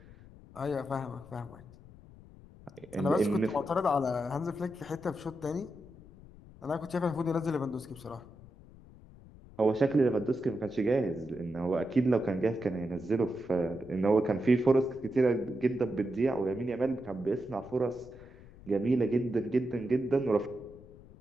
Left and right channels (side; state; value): left; noise; rumble, 21 dB below the sound